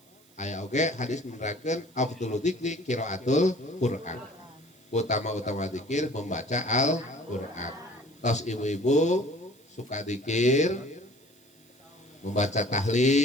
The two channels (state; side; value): noise; right; hiss, 29 dB below the sound